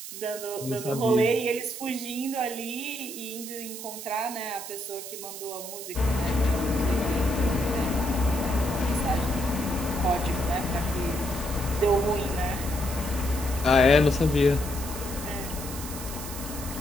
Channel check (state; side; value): noise; right; hiss, 10 dB below the sound